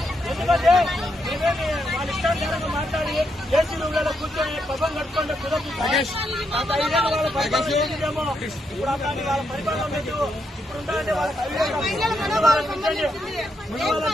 ఎందుకంటే మేమేమి వాళ్ళ ఇష్టానుసారంగా మాట్లాడి ఏసీలలో కూర్చొని పబ్బం కట్టుకుంటే కుదరదు. గత 5 ఏళ్ళు వాళ్ళ పరిపాలన చేసిందేమో, ఇప్పుడు అట్లాంటి వాళ్ళ పరిపాలన లేదు. ఇప్పుడు ఉండాలంటే వాళ్ళకి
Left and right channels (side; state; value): both; normal; correlation 0.80